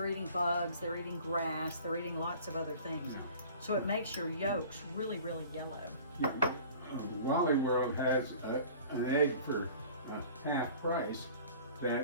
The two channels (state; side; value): inverted; both; correlation -0.45